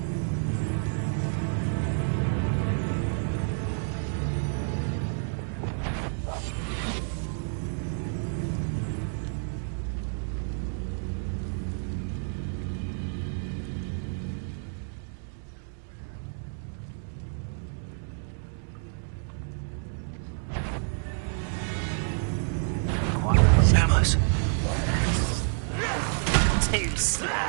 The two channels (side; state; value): left; silent; 59 dB below the other